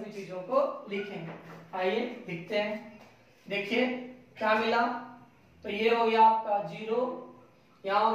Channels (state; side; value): identical; both; correlation 1.00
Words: चीजों को लिखेंगे। आइए लिखते हैं। देखिए क्या मिला, तो ये हो गया आपका 0, यहाँ